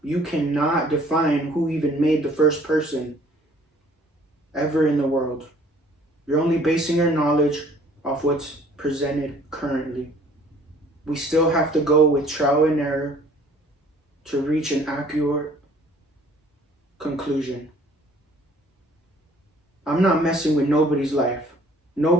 You cannot define who even made the first person ever in the world. You're only basing your knowledge off what's presented currently. We still have to go with trial and error to reach an accurate conclusion. I'm not messing with nobody's life.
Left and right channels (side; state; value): both; normal; correlation 0.56